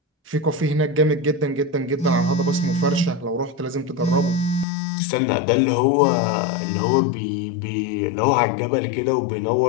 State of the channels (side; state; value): right; drops out; at 4.7 s